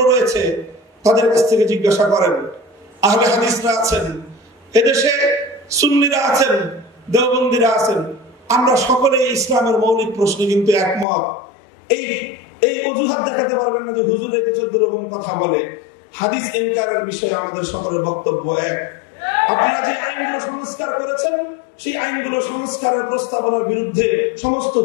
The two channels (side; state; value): right; drops out; at 11.1 s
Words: রয়েছে, তাদের কাছ থেকে জিজ্ঞাসা করেন। আহলে হাদিসরা আছেন, এদেশে সুন্নিরা আছেন, দেওবন্দিরা আছেন, আমরা সকলে ইসলামের মৌলিক প্রশ্নে কিন্তু একমত। এই অজুহাত দেখাতে পারবেন না যে হুজুর এতে 14 রকম কথা বলে। হাদিস ইনকারের বিষয়ে আমাদের সকলের বক্তব্য এক। আপনারা যে আইনগুলো সংস্কার করেছেন, সেই আইনগুলো সংস্কারের প্রস্তাবনার বিরুদ্ধে সমস্ত